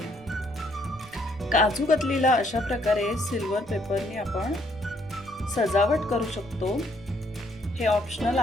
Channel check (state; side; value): noise; right; rumble, 22 dB below the sound